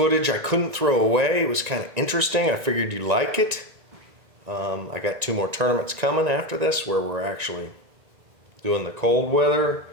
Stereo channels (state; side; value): late; left; 1.9 ms